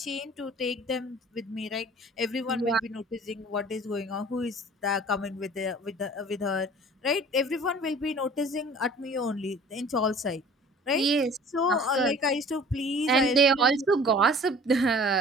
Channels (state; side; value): normal; both; correlation 0.47